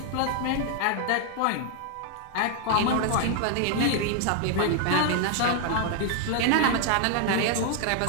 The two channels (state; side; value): different; both; correlation 0.00